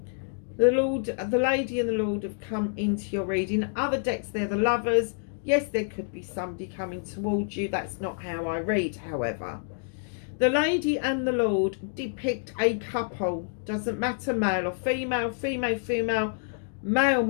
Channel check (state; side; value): silent; right; digital silence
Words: Lord, the Lady and the Lord have come into your reading. Other decks, they're the Lovers. Yes, there could be somebody coming towards you. That's not how I read, however. The Lady and the Lord depict a couple. Doesn't matter, male or female, female,